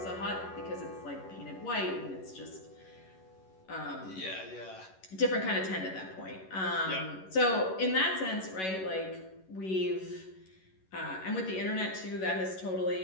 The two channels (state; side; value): late; right; 11 ms